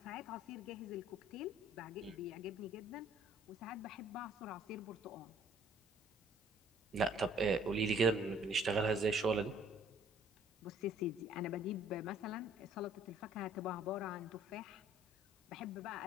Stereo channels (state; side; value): normal; both; correlation 0.58